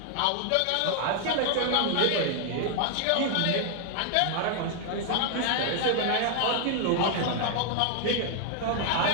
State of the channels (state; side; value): different; both; correlation 0.00